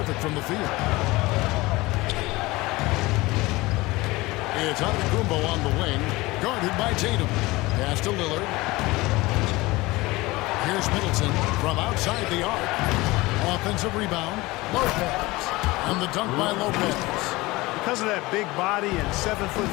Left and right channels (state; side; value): quieter; right; 21.0 dB